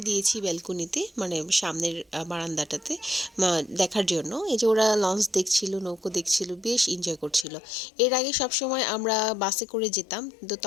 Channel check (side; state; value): right; drops out; at 7.5 s